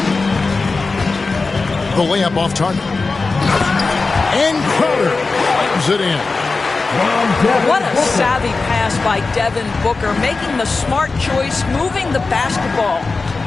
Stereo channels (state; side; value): quieter; right; 3.9 dB